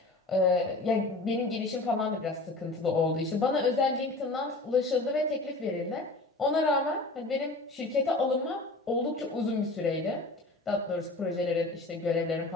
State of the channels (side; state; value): right; quieter; 3.0 dB